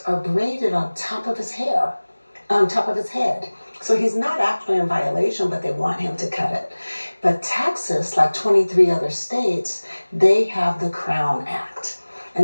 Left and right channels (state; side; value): inverted; both; correlation -1.00